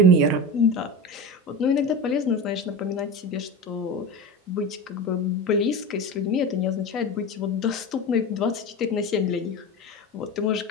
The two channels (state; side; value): normal; both; correlation 0.26